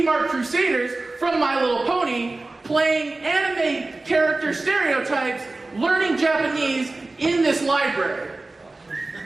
Mark Crusaders from My Little Pony, playing anime character stereotypes, learning Japanese in this library.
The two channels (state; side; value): quieter; left; 3.2 dB